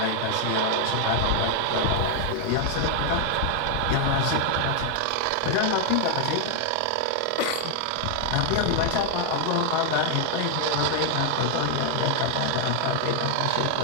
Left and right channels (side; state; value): both; different; correlation 0.00